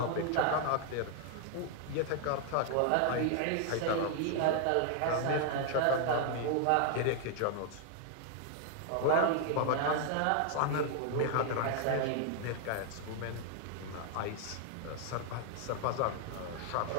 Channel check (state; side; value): different; both; correlation 0.00